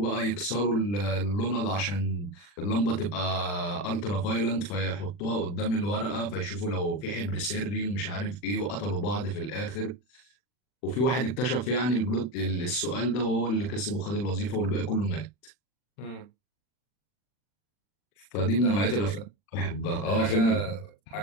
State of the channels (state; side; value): late; right; 40 ms